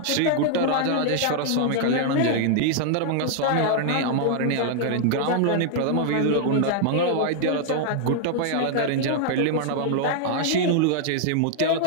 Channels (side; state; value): both; different; correlation -0.01